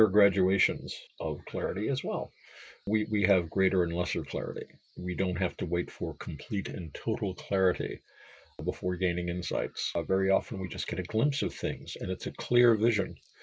are graduations of clarity as well. We have greater and lesser clarity. We don't have to wait for complete and total clarity before gaining insights. Very often we just get a glimpse of things and it's a clear vision.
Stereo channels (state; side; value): identical; both; correlation 1.00